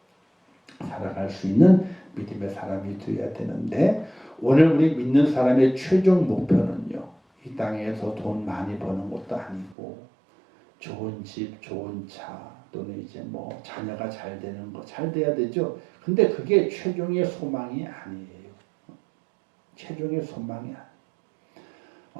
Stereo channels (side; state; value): left; drops out; at 9.8 s